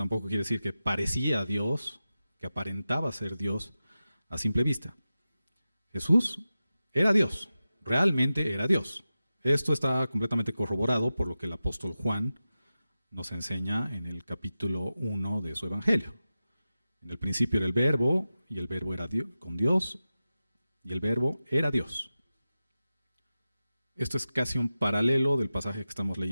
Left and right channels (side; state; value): both; inverted; correlation -0.94